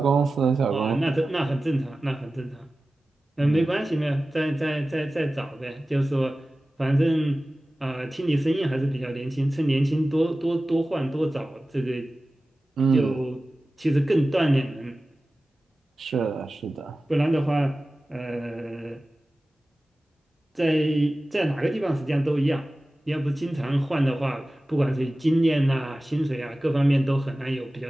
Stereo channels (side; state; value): both; normal; correlation 0.96